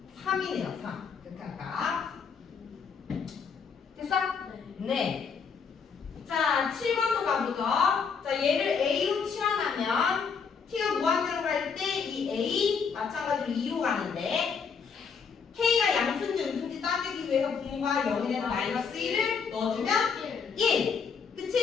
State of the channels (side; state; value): right; quieter; 6.0 dB